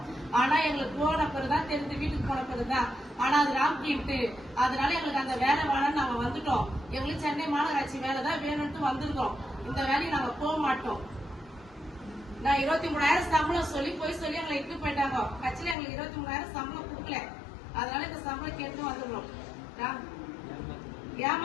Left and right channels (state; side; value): drops out; right; at 15.8 s